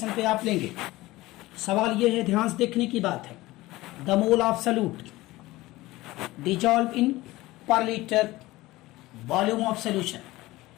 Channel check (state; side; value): quieter; right; 18.8 dB